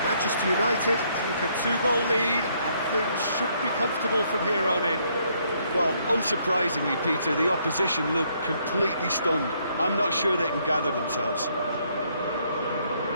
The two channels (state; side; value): inverted; both; correlation -0.70